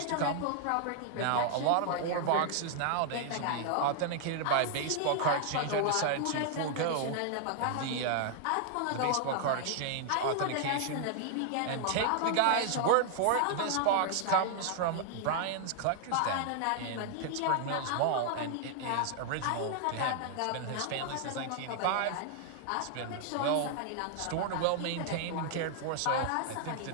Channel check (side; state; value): both; different; correlation 0.00